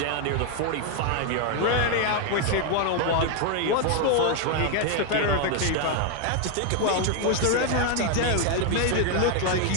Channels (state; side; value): different; both; correlation 0.01